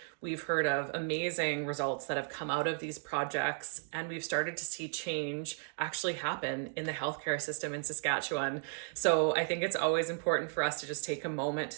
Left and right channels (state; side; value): silent; left; digital silence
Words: We've heard of amazing results that have come out of these projects, and we've started to see change actually happen in the healthcare system in Saskatchewan. So I think it's always important for us to just take a moment